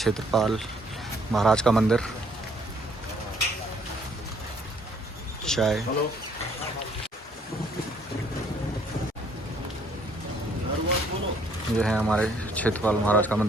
महाराज का मंदिर। चाय ये है हमारे क्षेत्रपाल महाराज का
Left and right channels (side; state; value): both; normal; correlation 0.63